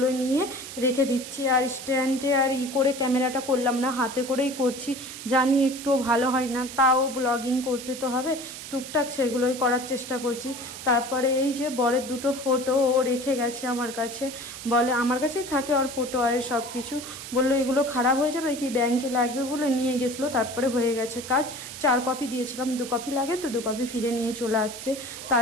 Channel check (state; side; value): noise; right; hiss, 11 dB below the sound